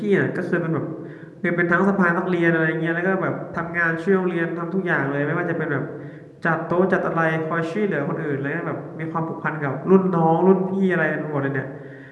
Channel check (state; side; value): identical; both; correlation 1.00